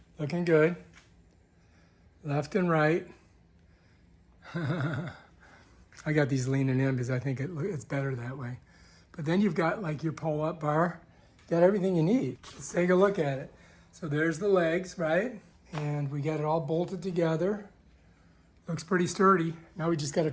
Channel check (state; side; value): identical; both; correlation 1.00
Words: Looking good. Left and right. I got these leaning in because I think it's better that way. But then you've got like your pull-up bar. Got everything you need. Let's take a look at it. So there's the legs, right? And we got it all bolted together. Looks pretty sturdy. Now we just got to